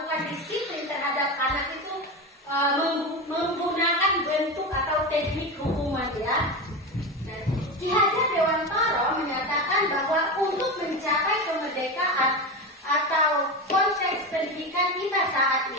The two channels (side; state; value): both; normal; correlation 0.20